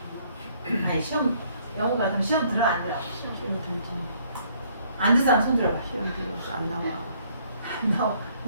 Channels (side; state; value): both; inverted; correlation -0.64